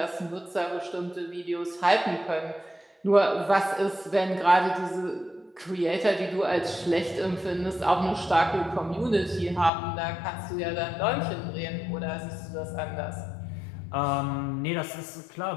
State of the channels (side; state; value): right; drops out; at 9.7 s